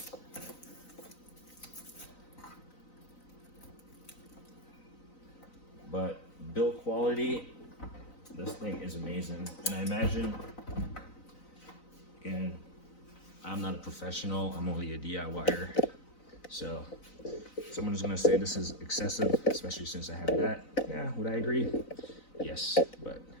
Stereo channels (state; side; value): late; right; 4.0 ms